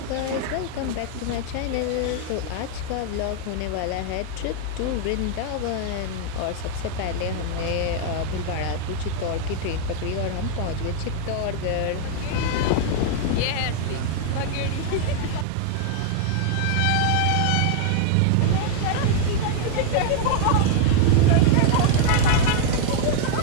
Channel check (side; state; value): both; different; correlation 0.00